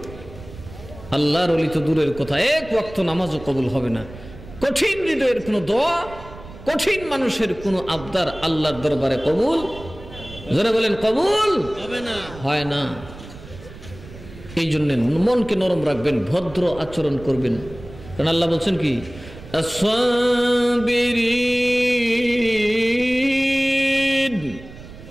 আল্লাহর ওলি তো দূরের কথা, এক ওয়াক্ত নামাজও কবুল হবে না। কঠিন হৃদয়ের কোনো দোয়া, কঠিন মানুষের কোনো আবদার আল্লাহর দরবারে কবুল, যারা বলেন কবুল হবে না, হয় না। এই জন্য মনকে নরম রাখবেন, ভদ্র আচরণ করবেন। কারণ আল্লাহ বলছেন কি, আস-সাবিরিন,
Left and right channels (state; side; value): noise; right; rumble, 17 dB below the sound